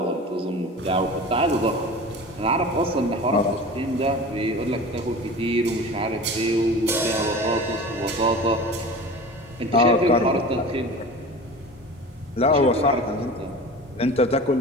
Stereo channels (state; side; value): normal; both; correlation 0.36